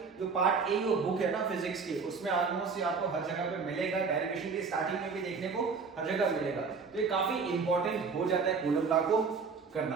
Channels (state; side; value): quieter; left; 5.1 dB